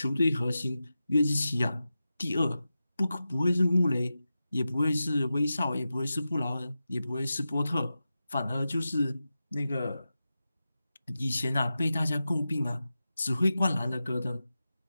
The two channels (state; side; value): inverted; both; correlation -0.92